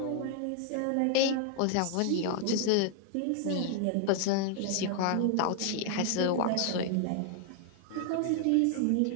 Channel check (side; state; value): both; different; correlation 0.00